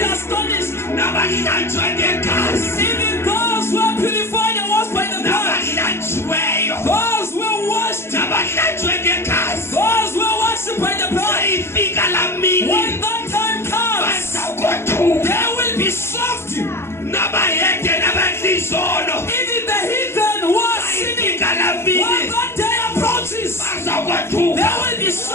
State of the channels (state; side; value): late; right; 0.12 ms